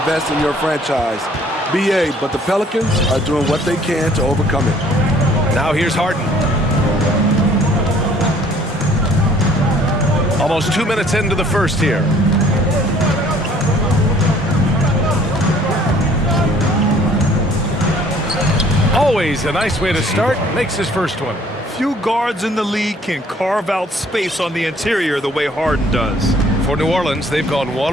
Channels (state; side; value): normal; both; correlation 0.58